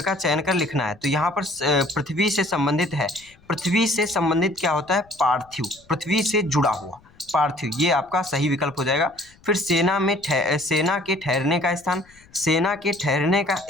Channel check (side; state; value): left; noise; rumble, 28 dB below the sound